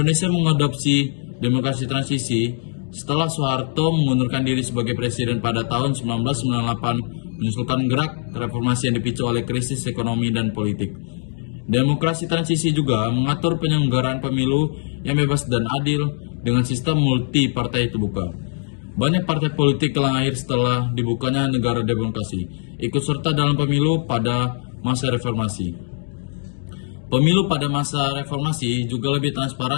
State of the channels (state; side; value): silent; right; 65 dB below the other